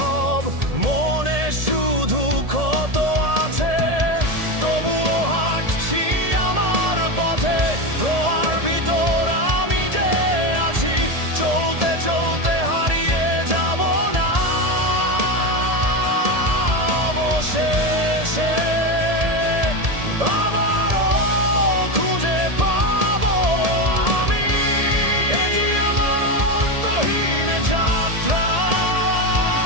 মনে শুধু ক্ষত আছে। তবুও হাঁটছি আমার পথে, রোয়ার ভিতর আমি যে আছি। চলতে চলতে হারিয়ে যাব না, অবশেষে আবারও খুঁজে পাবো আমি। এটি আমার অন্তহীন যাত্রা,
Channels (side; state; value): left; late; 1.7 ms